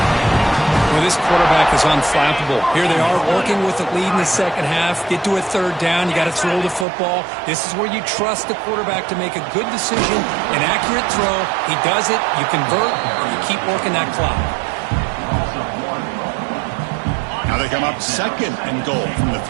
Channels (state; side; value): drops out; left; at 6.9 s